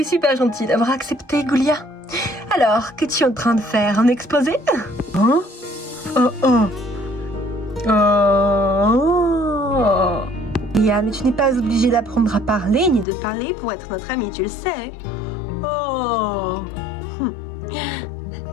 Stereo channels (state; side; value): drops out; right; at 13.1 s